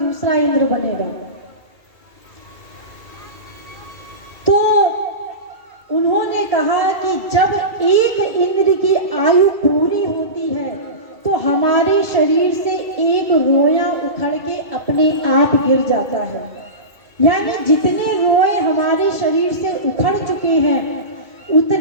इंद्र बनेगा। तो उन्होंने कहा कि जब एक इंद्र की आयु पूरी होती है तो हमारे शरीर से एक रोया उखड़ के अपने आप गिर जाता है। यानी जितने रोए हमारे शरीर से उखड़ चुके हैं,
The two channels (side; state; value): left; late; 2.3 ms